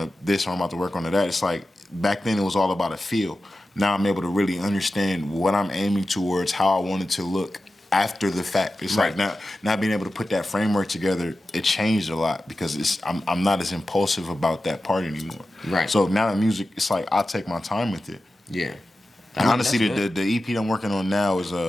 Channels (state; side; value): normal; both; correlation 0.93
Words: this, or I'm about to work on that. It's like back then it was all about a feel. Now I'm able to really understand what I'm aiming towards, how I want it to look after the fact. It's like now being able to put that framework together, it changed a lot because I'm not as impulsive about that part anymore. Right. So now the music, it's like I take my time with it. Yeah. And honestly, the EP that I'm working on now is